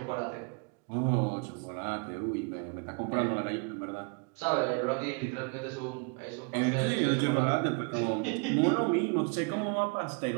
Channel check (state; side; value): quieter; left; 33.1 dB